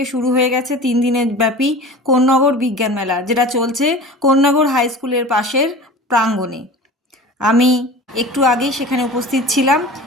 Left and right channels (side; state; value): both; normal; correlation 0.37